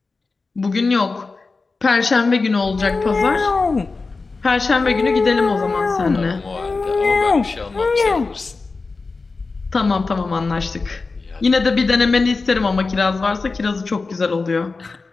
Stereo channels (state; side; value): quieter; right; 4.0 dB